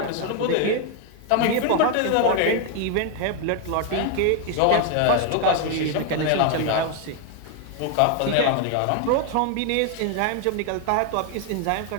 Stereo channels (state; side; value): different; both; correlation 0.01